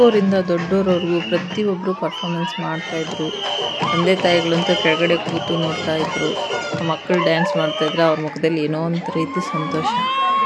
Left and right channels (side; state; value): both; identical; correlation 1.00